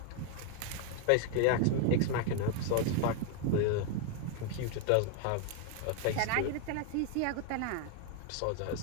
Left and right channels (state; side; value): different; both; correlation 0.01